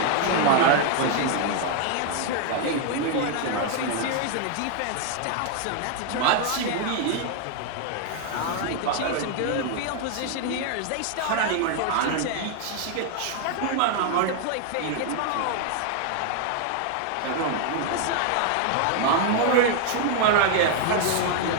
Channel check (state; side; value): different; both; correlation 0.00